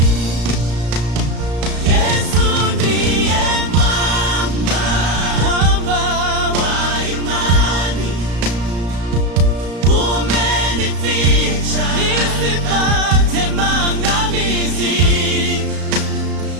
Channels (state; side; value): late; left; 34 ms